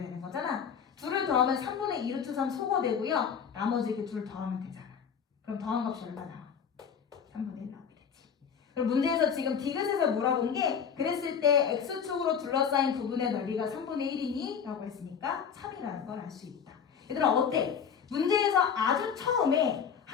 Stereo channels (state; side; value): quieter; right; 7.2 dB